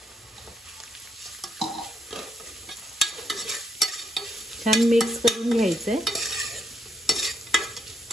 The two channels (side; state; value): both; normal; correlation 0.74